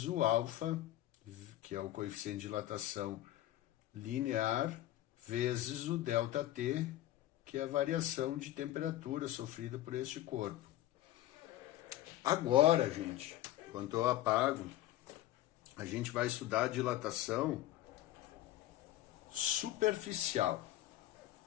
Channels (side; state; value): right; quieter; 14.5 dB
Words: o alfa, que é o coeficiente de dilatação linear, vezes o ΔT, que é a variação de temperatura sofrida por este corpo. Agora, gente, quando eu apago, a gente vai estudar a dilatação superficial,